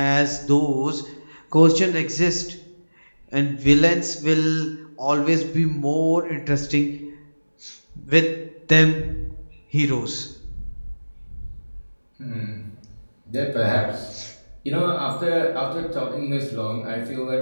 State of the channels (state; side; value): inverted; both; correlation -1.00